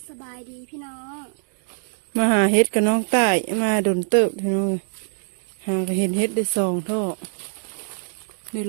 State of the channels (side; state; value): left; silent; digital silence